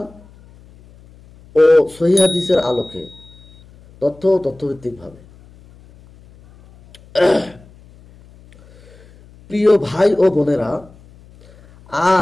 ও সহিহ হাদিসের আলোকে তথ্যভিত্তিকভাবে। প্রিয় ভাই ও বোনেরা,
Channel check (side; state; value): left; noise; hum, 25 dB below the sound